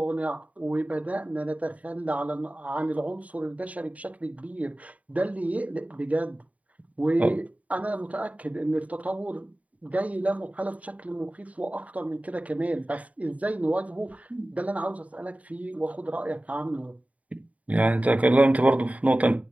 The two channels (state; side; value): late; left; 0.069 ms